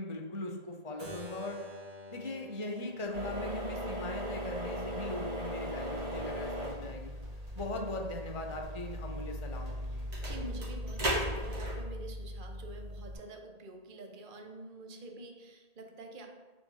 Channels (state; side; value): late; left; 1.8 ms